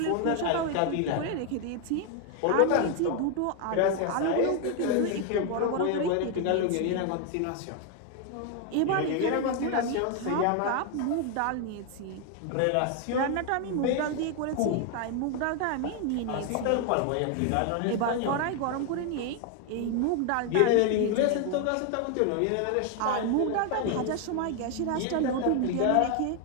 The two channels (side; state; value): both; different; correlation 0.00